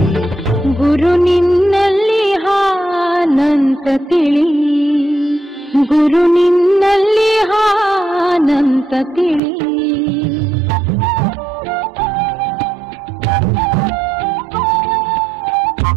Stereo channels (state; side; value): drops out; left; at 9.4 s